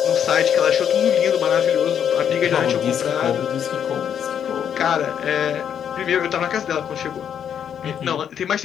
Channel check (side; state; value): right; quieter; 8.6 dB